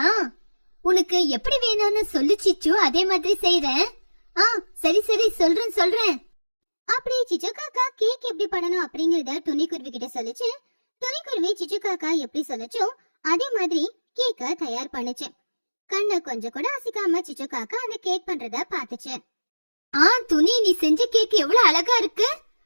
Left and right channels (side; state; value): both; inverted; correlation -1.00